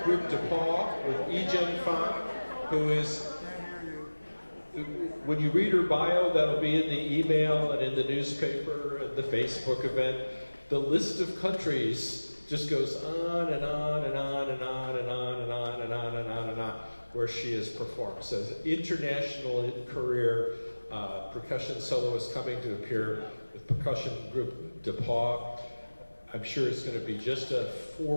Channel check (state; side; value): inverted; both; correlation -1.00